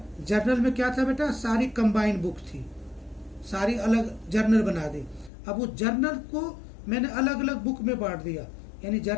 जर्नल में क्या था बेटा, सारी कंबाइंड बुक थी, सारी अलग जर्नल बना दी. अब वो जर्नल को मैंने अलग अलग बुक में बांट दिया, यानी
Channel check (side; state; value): right; drops out; at 5.3 s